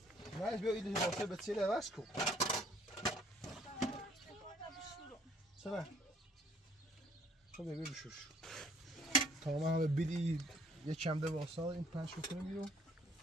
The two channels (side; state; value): both; normal; correlation 0.62